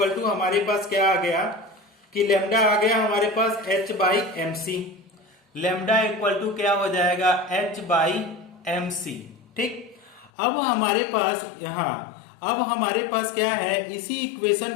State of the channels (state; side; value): drops out; right; at 10.3 s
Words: टू हमारे पास क्या आ गया कि लेमडा आ गया हमारे पास h by M C. Lambda equal to क्या हो जाएगा, h बाई एम सी, ठीक। अब हमारे पास अब हमारे पास क्या है, इसी